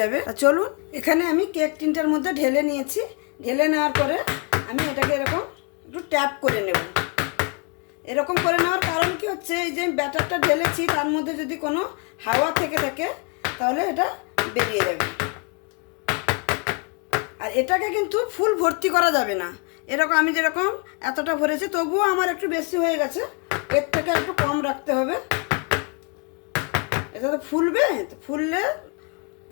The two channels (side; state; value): right; quieter; 34.2 dB